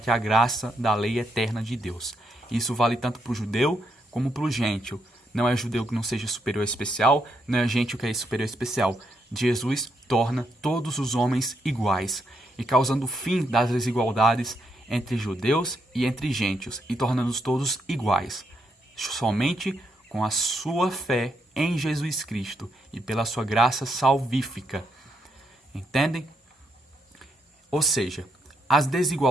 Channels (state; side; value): normal; both; correlation 0.78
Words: a graça da lei eterna de Deus. Isso vale tanto para o judeu como para o gentio. Não é judeu que não seja superior especial, não é gentio que é superior especial. Jesus torna todos os homens iguais, e causando o fim das desigualdades entre judeus e entre gentios, e tornando-os todos iguais, somente com a sua fé em Jesus Cristo e pela sua graça salvífica. Entendem? Ou seja, as